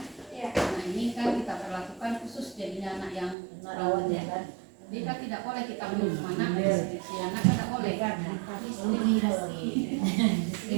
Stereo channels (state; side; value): drops out; left; at 3.4 s